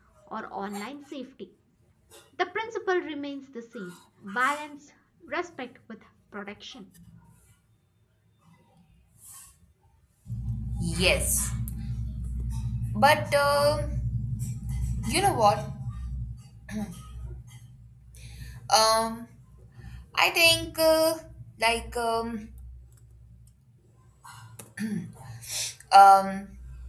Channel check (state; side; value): identical; both; correlation 1.00